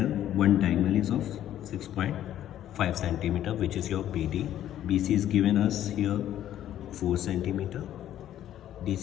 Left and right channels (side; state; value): right; quieter; 11.8 dB